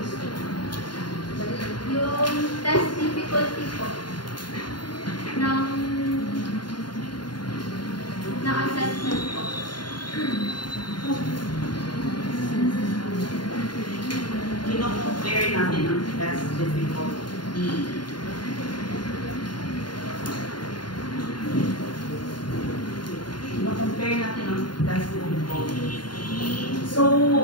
yung test difficulty po ng assessment po. compare natin ang test difficulty. Ma-compare natin ang test difficulty. So,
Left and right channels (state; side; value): late; right; 0.71 ms